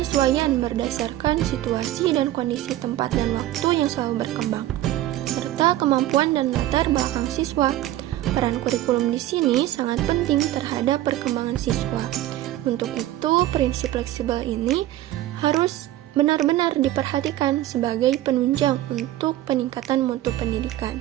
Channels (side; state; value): left; quieter; 14.3 dB